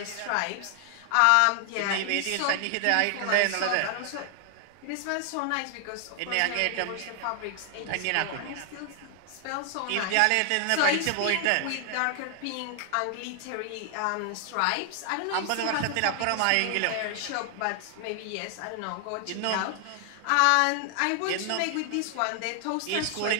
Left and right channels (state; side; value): different; both; correlation 0.00